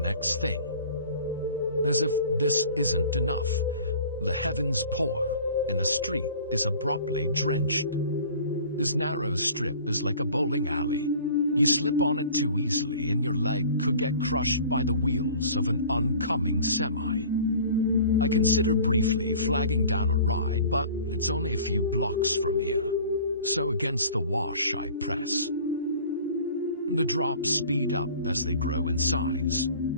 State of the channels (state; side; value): inverted; both; correlation -0.46